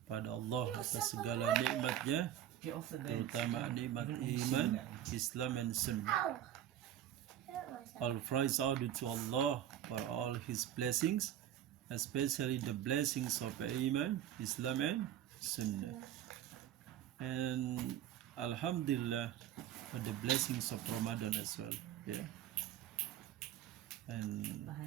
Allah atas segala nikmatnya, terutama nikmat iman, Islam and Sunnah. All praise are due to Allah for all His blessings, especially the blessings of Iman, Islam and Sunnah. And Alhamdulillah for the blessings of Ramadan as well. Yeah. And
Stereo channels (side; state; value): left; quieter; 11.2 dB